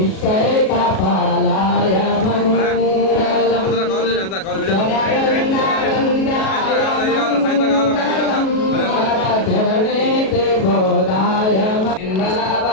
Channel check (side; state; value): right; late; 37 ms